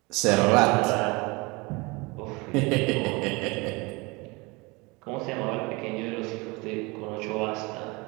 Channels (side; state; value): left; quieter; 26.0 dB